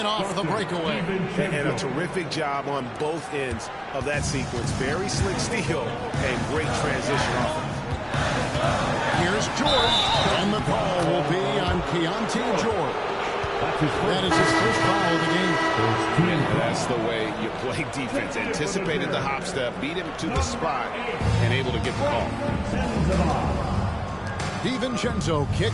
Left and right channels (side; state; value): both; identical; correlation 1.00